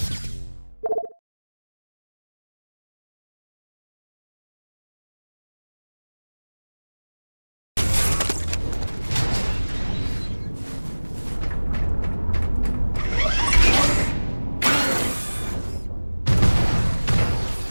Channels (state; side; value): inverted; both; correlation -1.00